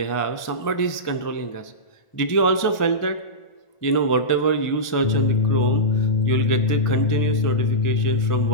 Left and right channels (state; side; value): late; right; 1.5 ms